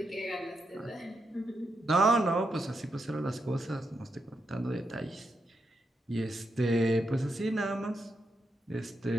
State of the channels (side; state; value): both; normal; correlation 0.84